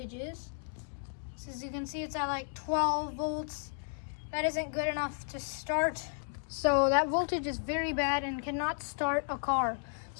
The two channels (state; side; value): silent; right; digital silence